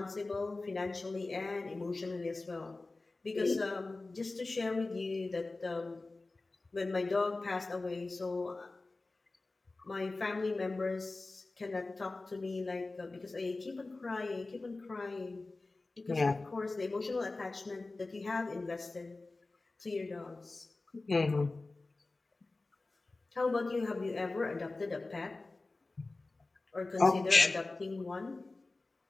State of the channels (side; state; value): right; quieter; 3.3 dB